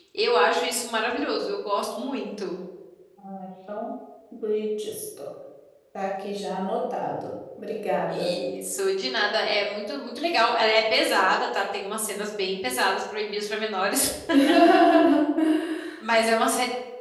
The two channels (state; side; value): identical; both; correlation 1.00